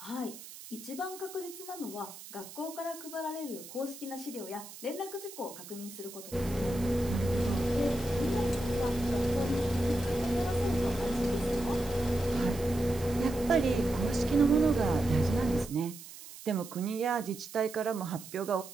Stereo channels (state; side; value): noise; right; hiss, 15 dB below the sound